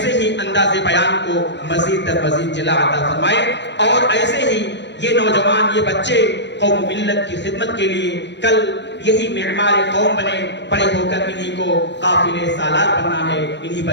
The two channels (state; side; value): late; right; 0.52 ms